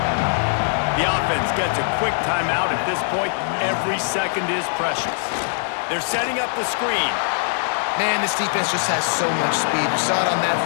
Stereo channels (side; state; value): right; silent; 65 dB below the other